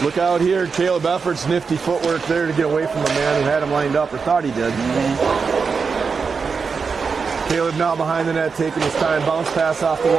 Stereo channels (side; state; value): left; quieter; 5.3 dB